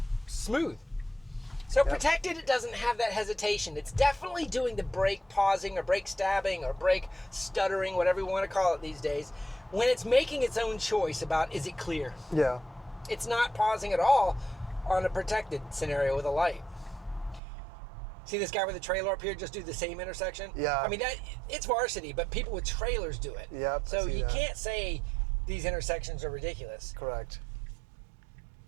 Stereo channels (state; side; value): drops out; left; at 17.4 s